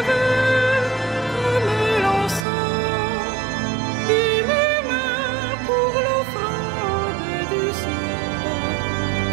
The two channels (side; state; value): left; drops out; at 2.5 s